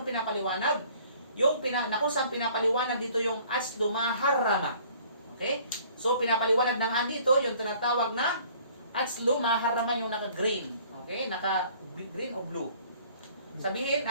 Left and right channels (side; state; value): both; inverted; correlation -0.55